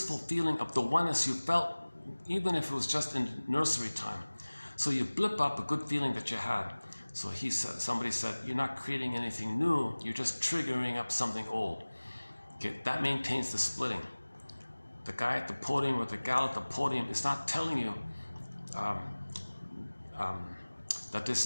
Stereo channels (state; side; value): inverted; both; correlation -1.00